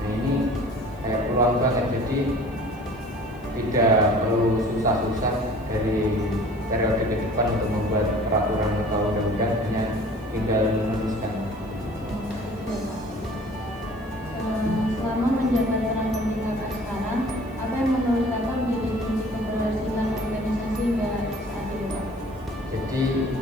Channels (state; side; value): noise; right; hiss, 30 dB below the sound